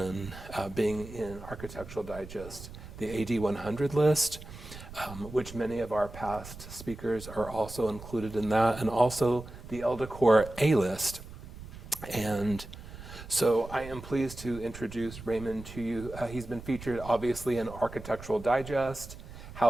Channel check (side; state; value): right; noise; rumble, 14 dB below the sound